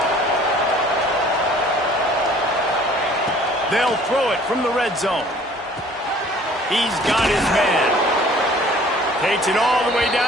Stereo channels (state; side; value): normal; both; correlation 0.53